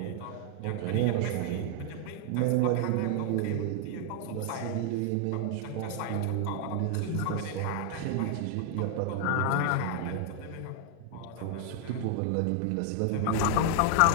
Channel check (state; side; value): different; both; correlation 0.00